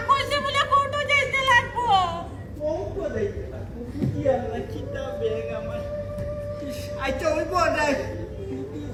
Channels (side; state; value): both; identical; correlation 1.00